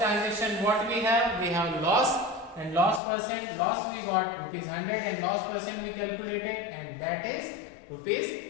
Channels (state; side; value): drops out; right; at 3.0 s